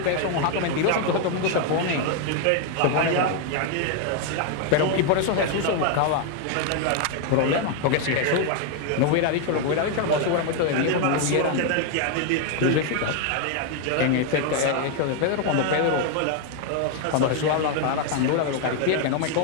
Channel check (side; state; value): both; different; correlation 0.01